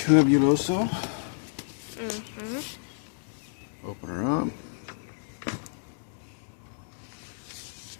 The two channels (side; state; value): right; silent; 58 dB below the other